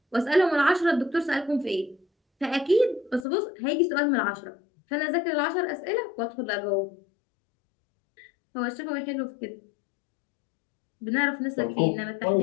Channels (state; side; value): drops out; right; at 3.2 s